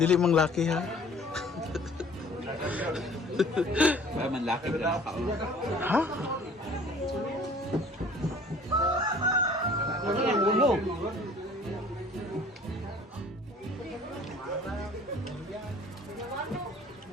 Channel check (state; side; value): normal; both; correlation 0.51